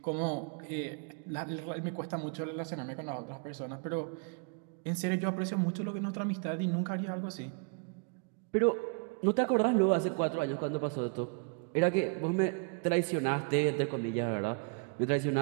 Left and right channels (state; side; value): quieter; left; 35.8 dB